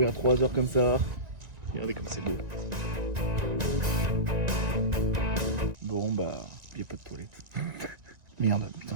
3 heures comme ça. Regardez comme c'est beau. Bon bah, il n'y a pas de toilette. Merde, putain,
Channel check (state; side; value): late; left; 1.9 ms